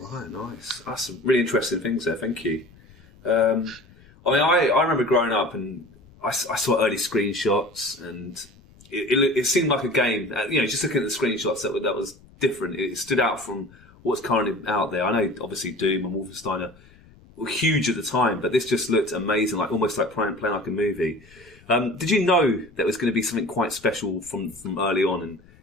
nice. That's some really interesting things there. Thank you. I remember growing up and I saw early screenshots, and it seemed like a game. Just looking at the screenshots, that was different. It stood out from what's currently out there. I know, obviously, Doom and Wolfenstein were huge at the time, but this just looked amazing, almost like playing like a movie. Did you know that was going to be something quite special from early on? And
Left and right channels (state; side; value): noise; left; rumble, 26 dB below the sound